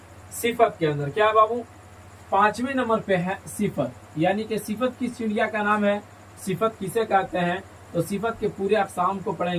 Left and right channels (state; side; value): identical; both; correlation 1.00